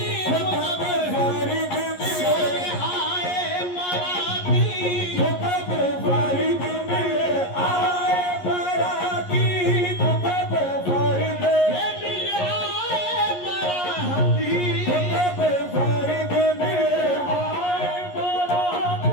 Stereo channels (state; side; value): late; right; 11 ms